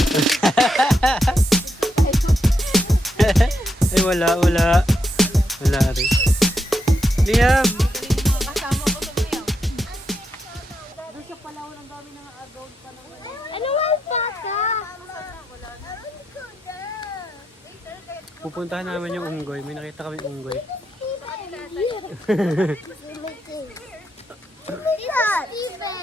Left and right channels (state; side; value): normal; both; correlation 0.82